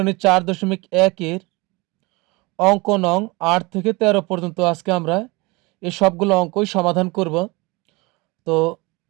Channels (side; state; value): left; quieter; 24.9 dB